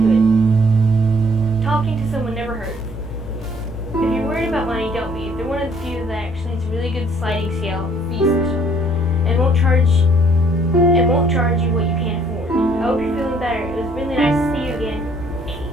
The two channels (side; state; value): both; normal; correlation 0.62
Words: it. Talking to someone never hurts. If you're worried about money, don't be. They're one of the few that actually has a really good sliding scale fee system, and won't charge you what you can't afford. I hope you're feeling better. It was really nice to see you again.